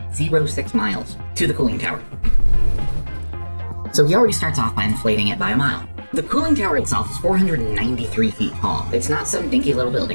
miles to the cooling tower. So he already starts off by inflating it by a mile. The cooling tower itself is 493 feet tall. It's not some dinky little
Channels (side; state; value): both; inverted; correlation -1.00